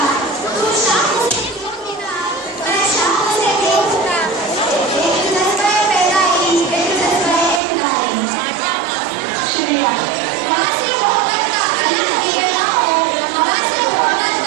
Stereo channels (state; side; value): drops out; left; at 7.6 s